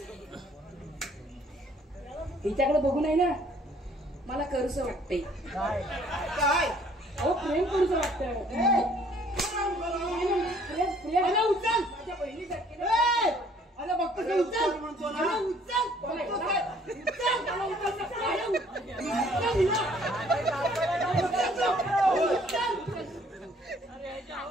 हिच्याकडे बघू नाही ना मला करूस वाटतंय. काय अहो प्रेम करूस वाटतंय. प्रेम प्रेम उचल. माझ्या बहिणीसारखी अरे बघतो ते उचल म्हणतो ना. अरे उचल.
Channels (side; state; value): both; normal; correlation 0.60